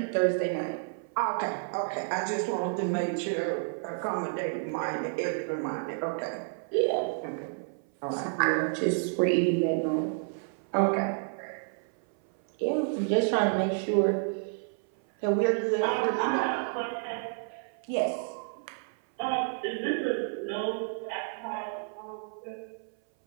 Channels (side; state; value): left; silent; 58 dB below the other